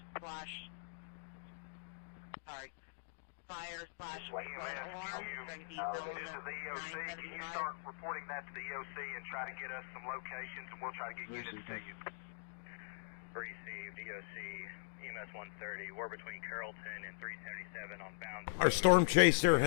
slash flood alarm. This is the EOC. Can you start reporting that to the EOC and try to get us some locations, and we'll try to get units to you. Received, EOC, EMS 130. We're between Carrollton and 377 on Bounds. Our storm chaser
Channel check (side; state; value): right; silent; digital silence